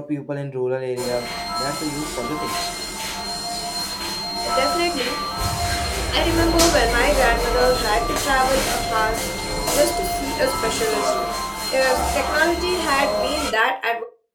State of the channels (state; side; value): identical; both; correlation 1.00